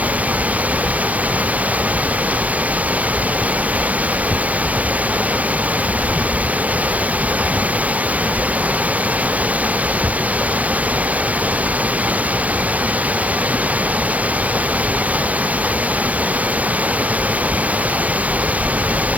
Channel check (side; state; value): left; late; 0.072 ms